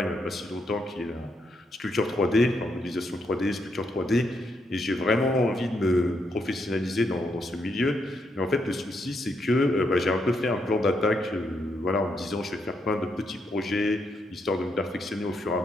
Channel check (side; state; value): both; normal; correlation 0.78